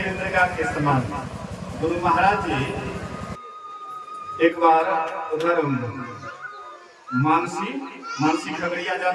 मृगा के समान। गुरु महाराज जी एक बार उधर मानसी खगड़िया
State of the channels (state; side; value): identical; both; correlation 1.00